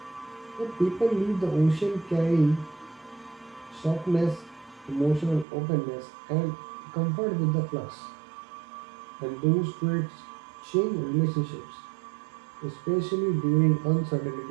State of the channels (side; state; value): left; drops out; at 5.5 s